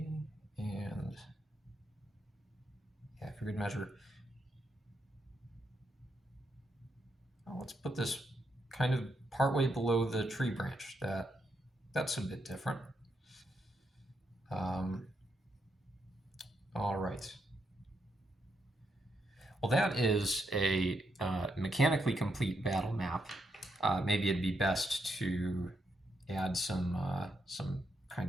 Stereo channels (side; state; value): both; normal; correlation 0.80